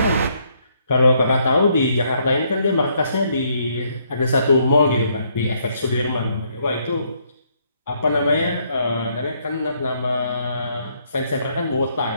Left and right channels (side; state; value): both; inverted; correlation -0.71